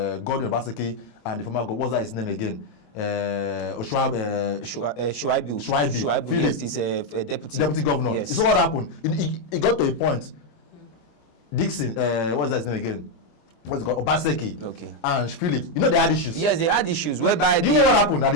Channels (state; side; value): late; right; 26 ms